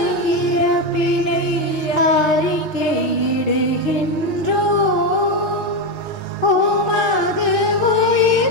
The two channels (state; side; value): normal; both; correlation 0.11